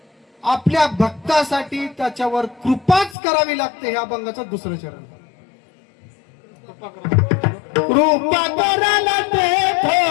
आपल्या भक्तासाठी त्याच्यावर कृपाच करावी लागते. हे अभंगाचं दुसरं चरण. कृपा करायला ते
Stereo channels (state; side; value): drops out; right; at 3.2 s